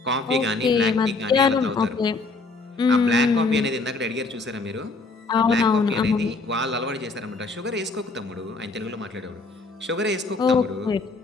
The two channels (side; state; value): right; quieter; 3.7 dB